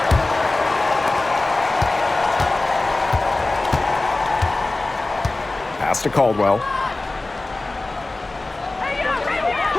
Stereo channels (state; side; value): quieter; right; 3.1 dB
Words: Pass to Caldwell.